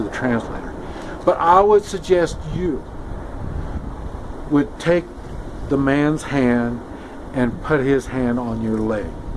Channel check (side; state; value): both; identical; correlation 1.00